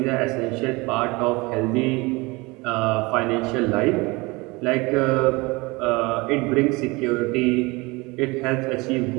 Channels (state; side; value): quieter; left; 24.6 dB